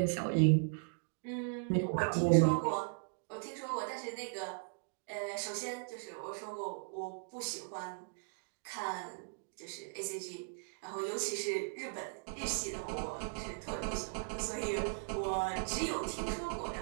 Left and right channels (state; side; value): silent; left; digital silence